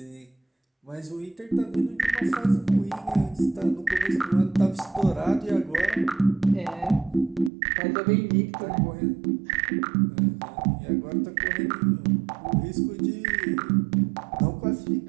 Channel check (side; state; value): left; drops out; at 7.5 s